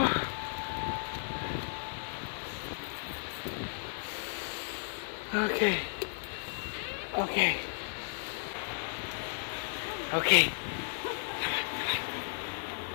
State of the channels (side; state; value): right; silent; digital silence